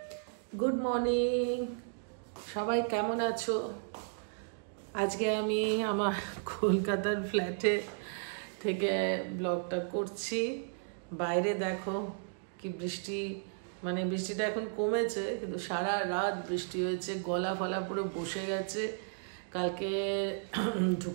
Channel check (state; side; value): silent; left; digital silence